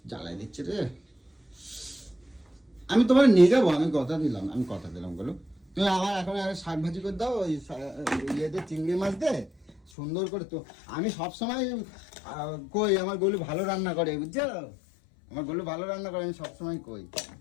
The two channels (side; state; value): right; drops out; at 9.8 s